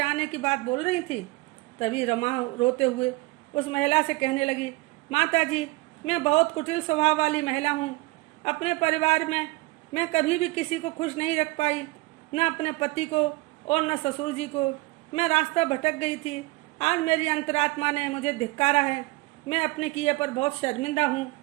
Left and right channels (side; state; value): left; quieter; 22.5 dB